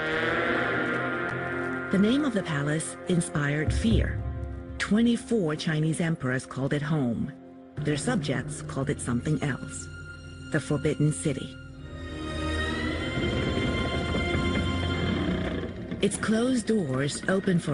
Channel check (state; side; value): identical; both; correlation 1.00